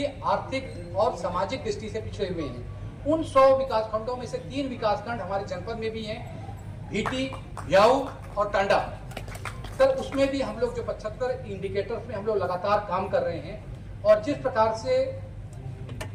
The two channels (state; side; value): identical; both; correlation 1.00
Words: आर्थिक और सामाजिक दृष्टि से पिछड़े हुए हैं। उन 100 विकासखंडों में से 3 विकासखंड हमारे जनपद में भी हैं, भीटी, ब्याऊ और टांडा। सर उसमें भी हम लोग जो 75 इंडिकेटर्स में हम लोग लगातार काम कर रहे हैं और जिस प्रकार से